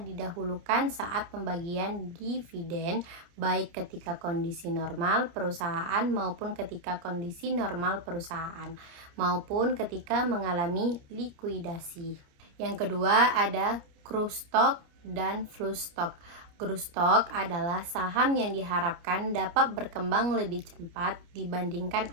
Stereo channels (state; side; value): late; left; 29 ms